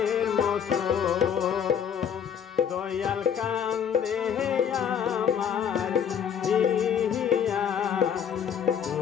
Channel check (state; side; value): quieter; right; 8.1 dB